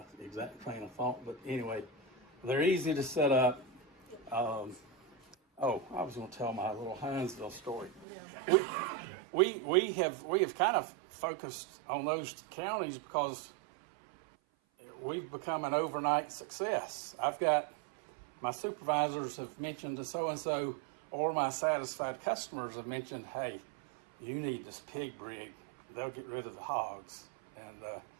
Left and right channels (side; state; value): left; drops out; at 8.1 s